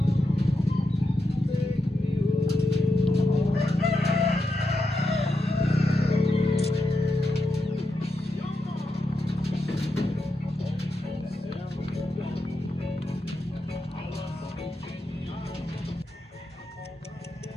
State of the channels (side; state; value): both; normal; correlation 0.86